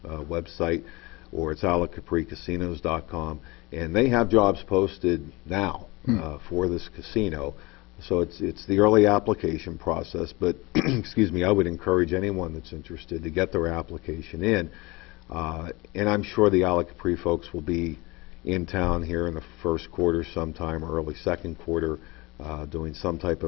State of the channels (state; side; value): quieter; right; 23.6 dB